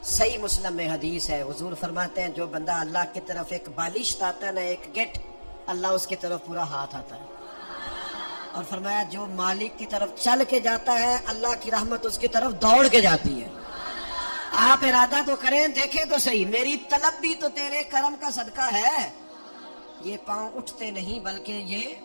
صحیح مسلم میں حدیث ہے، حضور فرماتے ہیں جو بندہ اللہ کی طرف ایک بالشت آتا ہے نا، ایک گٹ، اللہ اس کی طرف پورا ہاتھ آتا ہے. اور فرمایا جو مالک کی طرف چل کے جاتا ہے اللہ کی رحمت اس کی طرف دوڑ کے جاتی ہے. آپ ارادہ تو کریں, دیکھیں تو صحیح, میری طلب بھی تو تیرے کرم کا صدقہ ہے. یہ پاؤں اٹھتے نہیں بلکہ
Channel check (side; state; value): both; inverted; correlation -1.00